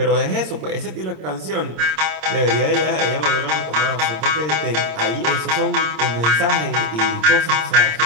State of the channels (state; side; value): late; left; 26 ms